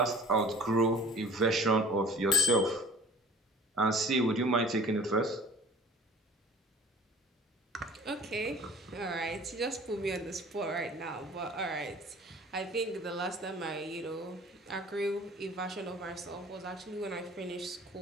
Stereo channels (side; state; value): both; normal; correlation 0.45